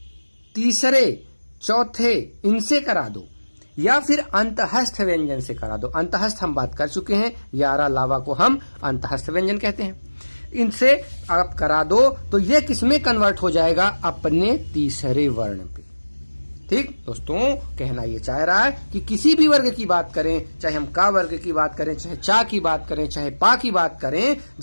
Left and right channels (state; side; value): inverted; both; correlation -1.00